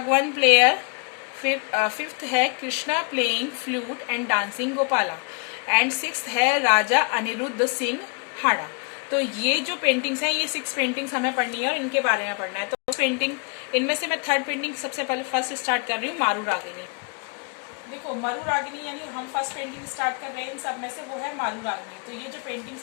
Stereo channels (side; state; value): right; quieter; 39.4 dB